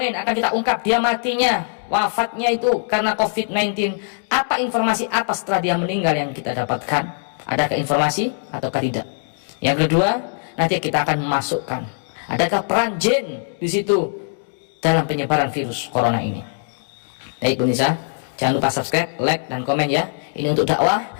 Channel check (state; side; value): silent; right; digital silence